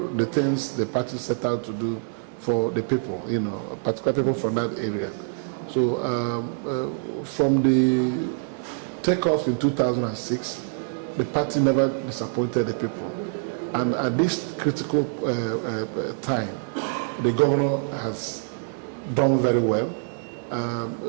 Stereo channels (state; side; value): silent; left; digital silence